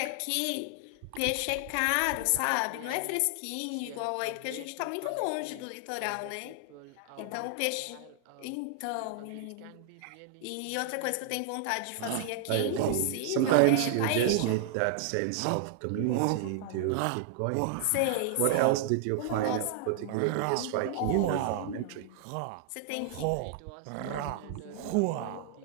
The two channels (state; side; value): different; both; correlation -0.01